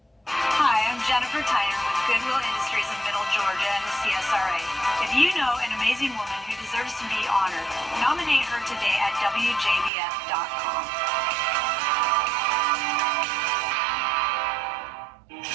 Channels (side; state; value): left; drops out; at 9.9 s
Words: Hi, I'm Jennifer Tyner with Goodwill Industries of Middle Georgia and the CSRA. If you know an amazing woman who deserves to be honored, nominate her today at WJBF.com.